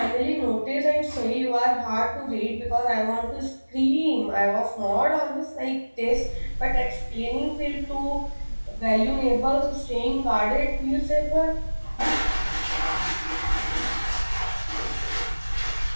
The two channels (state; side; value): inverted; both; correlation -1.00